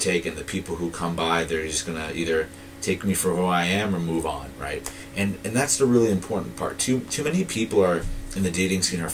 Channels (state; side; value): identical; both; correlation 1.00